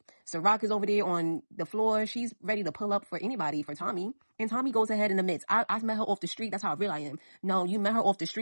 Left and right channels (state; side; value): inverted; both; correlation -1.00